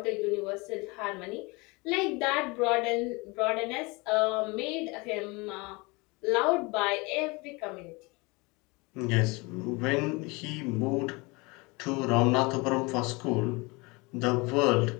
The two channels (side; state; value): right; quieter; 26.3 dB